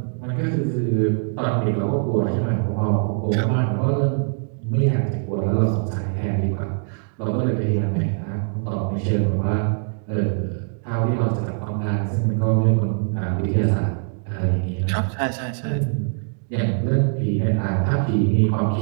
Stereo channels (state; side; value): silent; left; 59 dB below the other